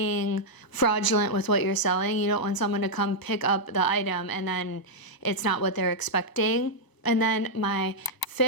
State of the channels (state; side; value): late; right; 1.0 ms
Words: fraudulent with what you're selling. You don't want someone to come pick up the item and then it's not what they're expecting. And then my